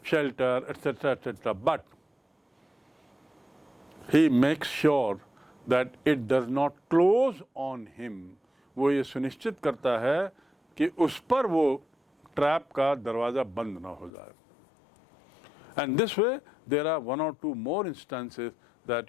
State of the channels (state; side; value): drops out; right; at 14.1 s